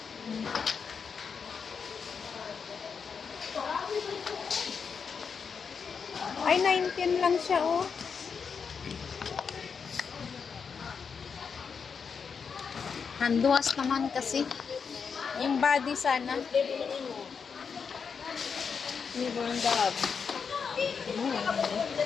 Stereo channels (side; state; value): right; quieter; 6.0 dB